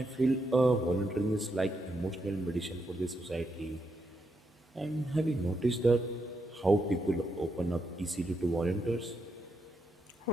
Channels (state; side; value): normal; both; correlation 0.81